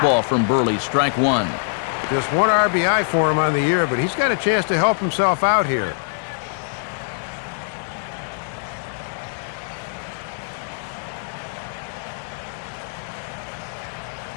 from Burley, strike one. Just one RBI for him on the year, but he's got a chance to help himself out here.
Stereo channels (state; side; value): silent; right; digital silence